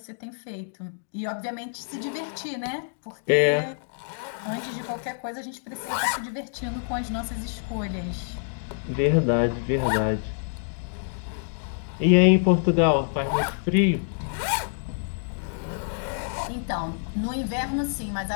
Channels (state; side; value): silent; right; digital silence